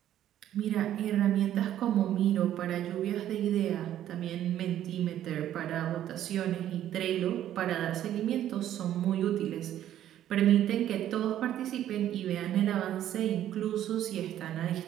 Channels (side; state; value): left; quieter; 11.7 dB